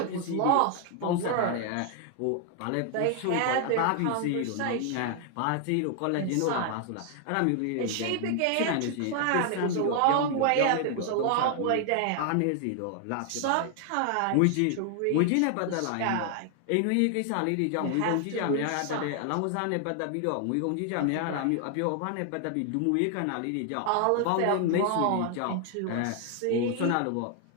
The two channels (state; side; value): different; both; correlation 0.00